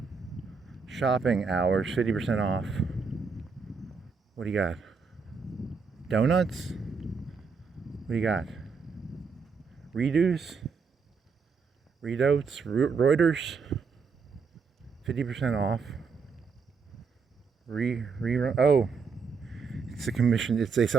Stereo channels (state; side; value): quieter; left; 5.2 dB